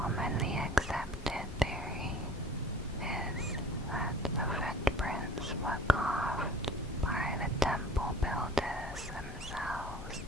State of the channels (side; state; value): both; normal; correlation 0.46